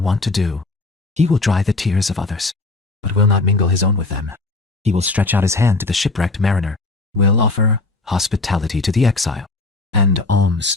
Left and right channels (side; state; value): right; quieter; 3.3 dB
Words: to do. He will dry the tears of others, but will not mingle his own with them. He will stretch out his hand to the shipwrecked mariner, will offer hospitality to the exile, and alms